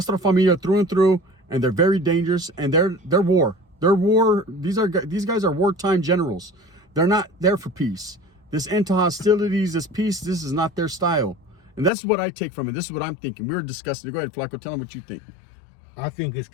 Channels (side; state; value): right; drops out; at 11.9 s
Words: Familia through and through, and they're very dangerous, and they're war. These guys are wartime generals. They're not there for peace. This end to hostilities, this peace, this is not their style. And that's what I take from it. This is what I'm thinking. We were discussing it. Go ahead, Flaco. Tell them what you think. I think it's